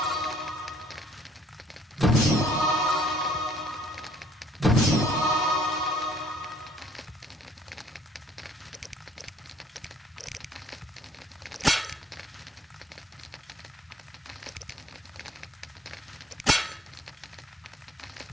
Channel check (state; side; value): normal; both; correlation 0.60